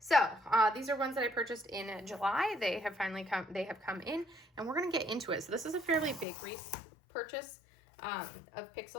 these are ones that I purchased in July. They have finally come in, and we're gonna get into it. So this is a fairly big purchase of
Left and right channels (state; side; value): drops out; right; at 6.2 s